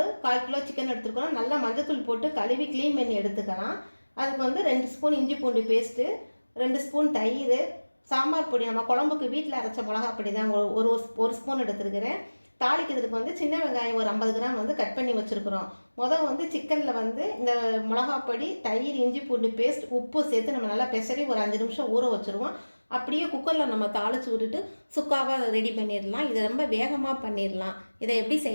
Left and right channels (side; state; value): both; inverted; correlation -1.00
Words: 1/4 கிலோ சிக்கன் எடுத்துக்கிறோம். நல்லா மஞ்சத்தூள் போட்டு கழுவி க்ளீன் பண்ணி எடுத்துக்கலாம். அதுக்கு 2 ஸ்பூன் இஞ்சி பூண்டு பேஸ்ட்டு, 2 ஸ்பூன் தயிர், சாம்பார் பொடி, நம்ம குழம்புக்கு வீட்டில் அரைச்ச மிளகா பொடி தான் ஒரு ஸ்பூன் எடுத்துருக்கிறேன். தாளிக்கிறதுக்கு சின்ன வெங்காயம் ஒரு 50 கிராம் கட் பண்ணி வச்சுருக்குறோம். சிக்கனில் இந்த மிளகாப்பொடி, தயிர், இஞ்சி பூண்டு பேஸ்ட், உப்பு சேர்த்து நம்ம நல்லா பெசரி ஒரு 5 நிமிஷம் ஊற வச்சுருவோம். அப்படியே குக்கரில் நம்ம தாளித்து விட்டுட்டு சுக்காவாக ரெடி பண்ணிடலாம். இதை ரொம்ப வேகமாக பண்ணிடலாம். இதை எப்படி